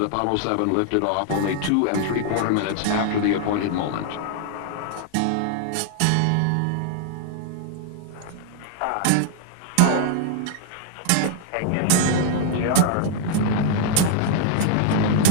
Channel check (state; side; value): different; both; correlation 0.00